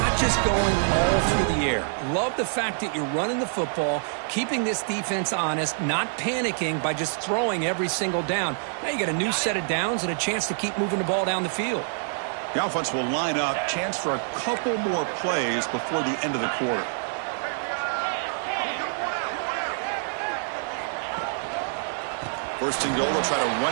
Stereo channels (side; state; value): left; silent; digital silence